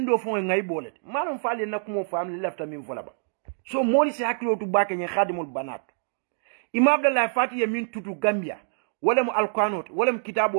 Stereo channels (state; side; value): silent; left; digital silence